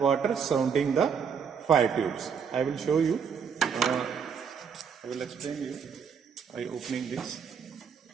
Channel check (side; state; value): left; quieter; 6.7 dB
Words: surrounding the fire tubes. I will show you. I will explain you by opening this.